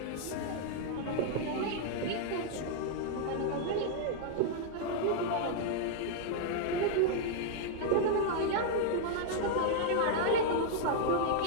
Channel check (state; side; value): different; both; correlation -0.01